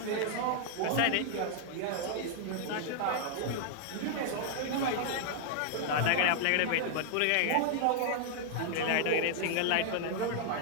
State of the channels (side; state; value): both; different; correlation 0.00